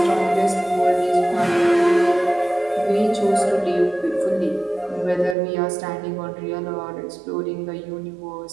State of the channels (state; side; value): drops out; left; at 5.4 s